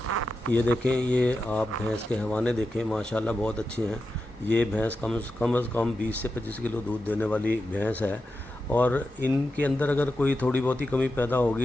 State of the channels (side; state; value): both; normal; correlation 0.89